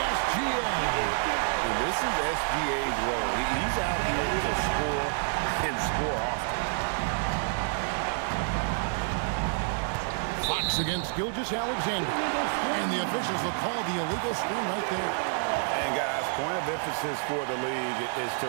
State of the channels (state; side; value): silent; left; 59 dB below the other